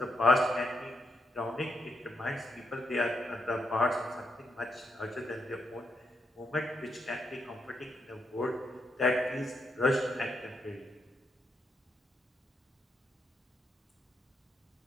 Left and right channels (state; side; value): normal; both; correlation 0.80